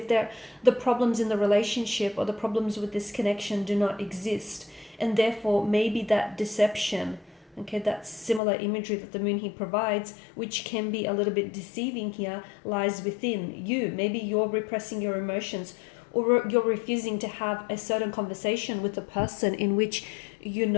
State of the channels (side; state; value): right; drops out; at 8.4 s